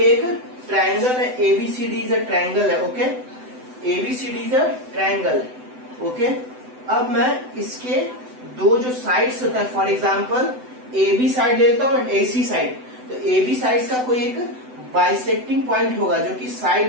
एक triangle है, ABCD is a triangle है, okay, ABCD is a triangle है, ओके। अब मैं इसके दो जो साइड्स होता है, फॉर एग्जांपल AB साइड लेता हूँ एंड AC साइड, तो AB साइड का कोई एक बाइसेक्टिंग पॉइंट होगा जो कि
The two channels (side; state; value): left; late; 7.9 ms